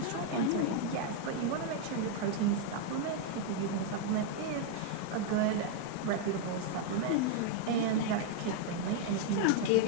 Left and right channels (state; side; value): different; both; correlation 0.00